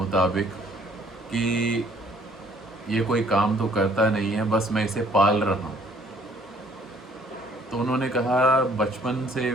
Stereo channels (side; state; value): both; normal; correlation 0.59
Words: कि ये कोई काम तो करता नहीं है, बस मैं इसे पाल रहा हूँ। तो उन्होंने कहा बचपन से